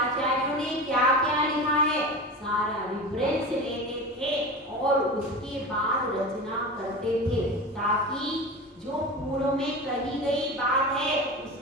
ने क्या क्या लिखा है सारा रेफरेंस लेते थे और उसके बाद रचना करते थे ताकि जो पूर्व में कही गई बात है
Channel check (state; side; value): normal; both; correlation 0.29